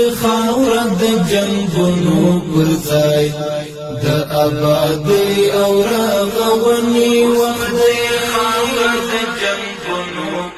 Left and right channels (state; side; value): identical; both; correlation 1.00